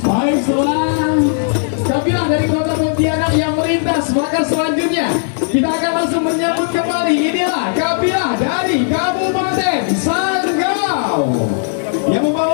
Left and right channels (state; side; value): silent; right; 69 dB below the other